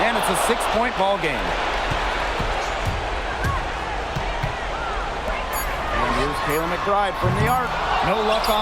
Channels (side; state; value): both; identical; correlation 1.00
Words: and it's a 6-point ball game. And here's Kayla McBride from the arc. No luck